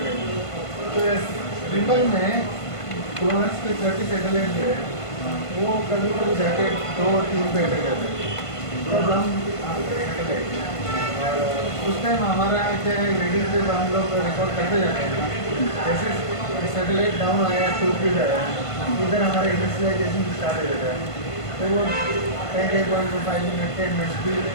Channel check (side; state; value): right; late; 1.5 ms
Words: है। तो रिबन में फ्लोरेंस के 30 सैटेलाइट जो है वो कभी कभी जाके 2-3 पे अटक जाते हैं। तब हम सैटेलाइट और उस टाइम हमारा क्या है, रीडिंग पे हम लोग रिकॉर्ड करते जाते हैं। जैसे सैटेलाइट डाउन आया, 2 फीट आया, इधर हमारा इनिशियलाइजेशन स्टार्ट हो जाता है। तो वो 10.5 मिनट 10 मिनट्स भी